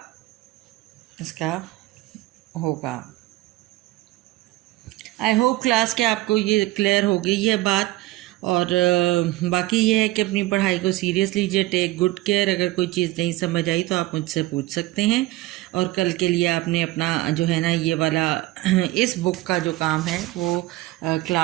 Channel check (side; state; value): left; quieter; 18.1 dB